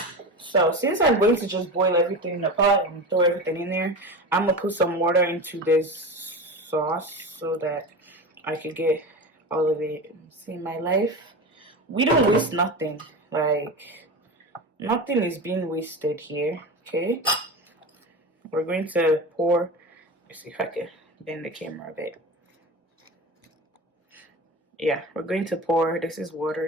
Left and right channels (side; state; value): both; normal; correlation 0.26